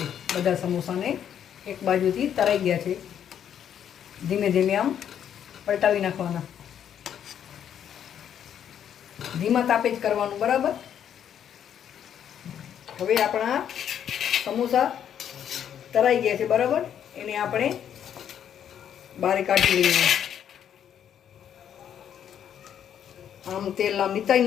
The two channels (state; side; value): quieter; right; 9.3 dB